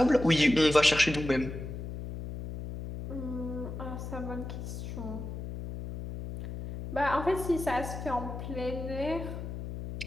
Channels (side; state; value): left; noise; hum, 7 dB below the sound